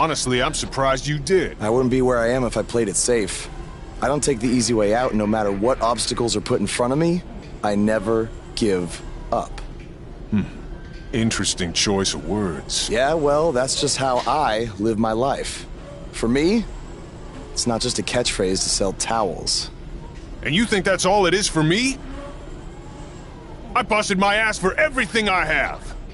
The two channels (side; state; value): both; identical; correlation 1.00